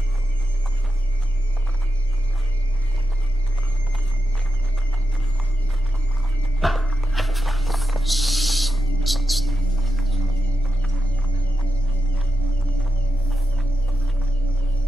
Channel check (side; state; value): both; normal; correlation 0.89